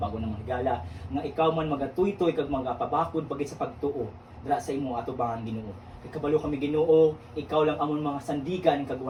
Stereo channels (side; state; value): both; identical; correlation 1.00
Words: na higala nga ikaw man magatuy-tuy kag magapabakod pagit sa pagtuo dira sa imo atubangan Ginoo. Kabalo kami Ginoo, ikaw lang amon mga sandigan kag